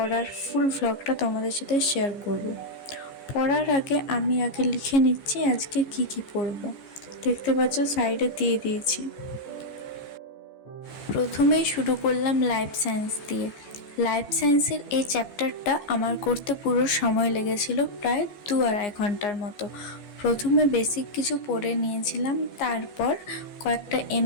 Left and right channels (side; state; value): right; late; 15 ms